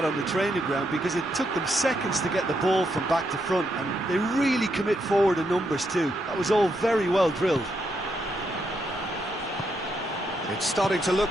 on the training ground because it took them seconds to get the ball from back to front, and they really commit forward in numbers too. That was all very well drilled. It's starting to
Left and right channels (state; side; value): normal; both; correlation 0.79